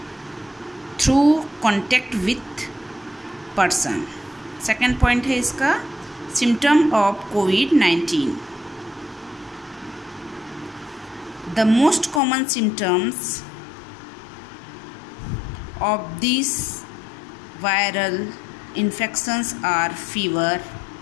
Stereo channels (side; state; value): right; drops out; at 12.2 s